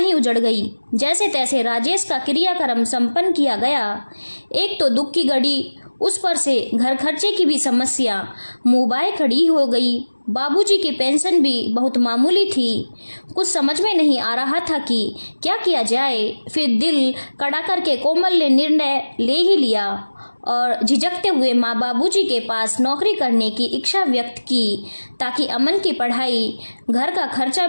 उजड़ गई। जैसे तैसे राजेश का क्रियाक्रम संपन्न किया गया। एक तो दुख की घड़ी, उस पर से घर खर्चे की भी समस्या मुँह बाए खड़ी हो गई। बाबूजी की पेंशन भी बहुत मामूली थी। कुछ समझ में नहीं आ रहा था कि क्या किया जाए। फिर दिल कड़ा करके कोमल ने निर्णय ले ही लिया और झिझकते हुए माँ बाबूजी के पास नौकरी करने की इच्छा व्यक्त की, ताकि अमन की पढ़ाई, घर का खर्चा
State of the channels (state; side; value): inverted; both; correlation -1.00